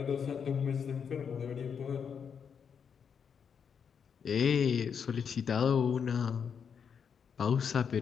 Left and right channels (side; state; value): right; quieter; 7.0 dB